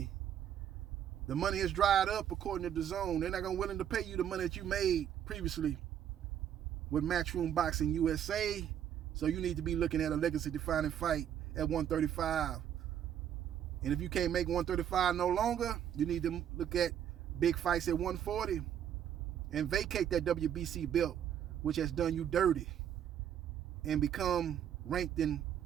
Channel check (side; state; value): left; quieter; 9.8 dB